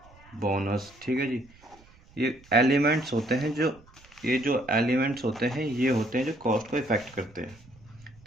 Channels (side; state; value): right; noise; rumble, 26 dB below the sound